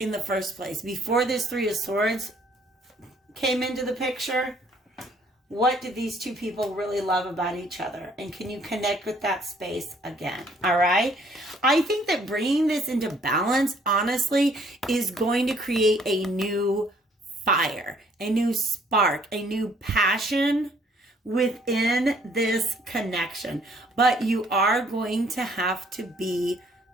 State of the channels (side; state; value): both; normal; correlation 0.62